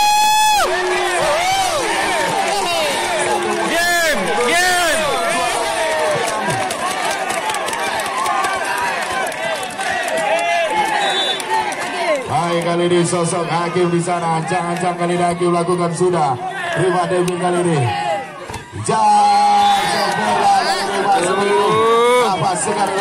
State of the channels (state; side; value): identical; both; correlation 1.00